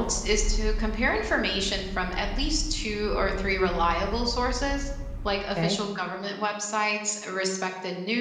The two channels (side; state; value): both; identical; correlation 1.00